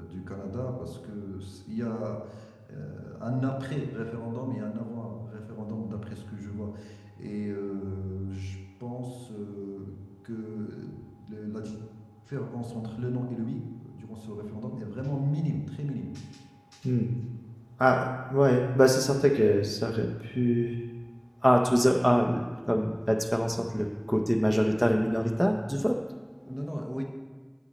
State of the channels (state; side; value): identical; both; correlation 1.00